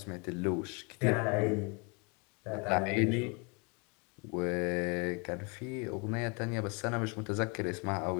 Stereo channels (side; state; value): right; quieter; 31.9 dB